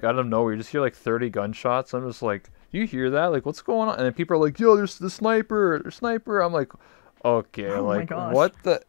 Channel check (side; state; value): right; silent; 61 dB below the other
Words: out of nowhere, you just hear like 30 gunshots. I'm just like, you hear that? Like, what's going on? And then people are like, yo, there's the sniper, there's sniper. I'm like, okay, like what the?